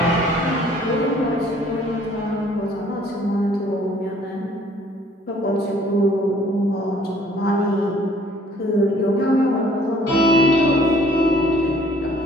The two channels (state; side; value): normal; both; correlation 0.58